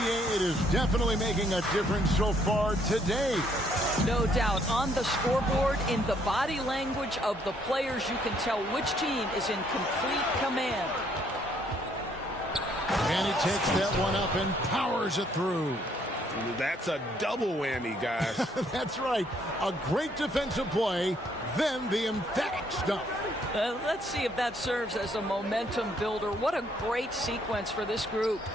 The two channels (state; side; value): normal; both; correlation 0.67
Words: it is definitely making a difference so far today. No doubt. On the scoreboard, in the body language of the players, you can tell which team is in complete command. And he takes that one up and powers it through. That's a double whammy, guys. That's right. A great defensive play, then the emphatic stuff. Let's see if that serves as a momentum builder. What a great sequence for this group.